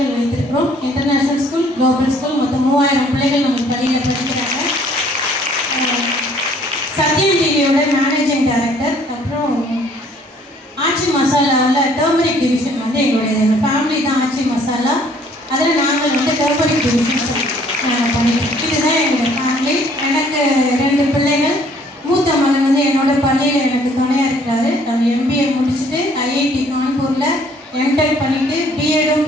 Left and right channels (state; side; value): normal; both; correlation 0.60